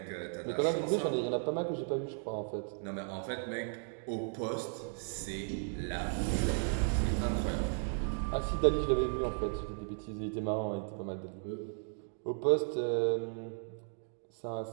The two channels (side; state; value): left; silent; 54 dB below the other